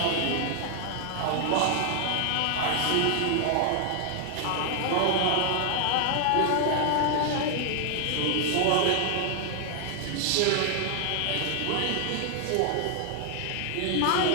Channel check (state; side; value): different; both; correlation 0.00